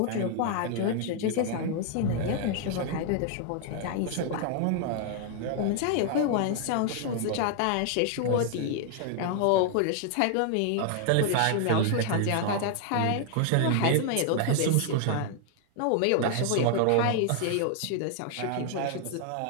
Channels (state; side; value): different; both; correlation 0.00